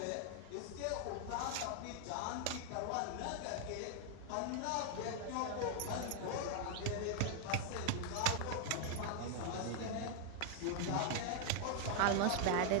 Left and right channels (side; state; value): both; different; correlation 0.00